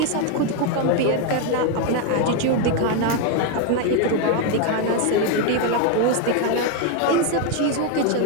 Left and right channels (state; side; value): different; both; correlation 0.01